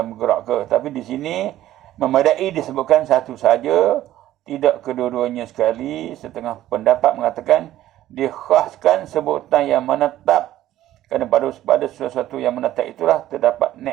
bergerak ke. Tapi di sini memadai disebutkan satu saja, tidak kedua-duanya sekali. Setengah pendapat mengatakan dikhaskan sebutan yang menetap, kerana pada sesuatu yang menetap itulah terdapat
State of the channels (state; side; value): quieter; left; 13.7 dB